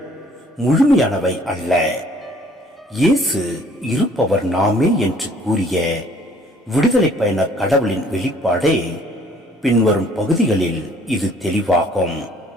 முழுமையானவை அல்ல. இயேசு இருப்பவர் நாமே என்று கூறிய விடுதலை பயண கடவுளின் வெளிப்பாடே பின்வரும் பகுதிகளில் இது தெளிவாகும்.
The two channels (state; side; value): normal; both; correlation 0.58